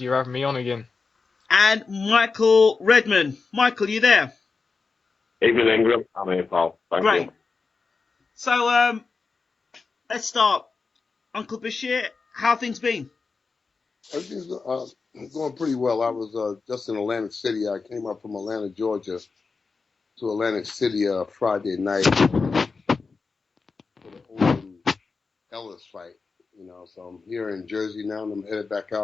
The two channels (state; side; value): quieter; right; 4.5 dB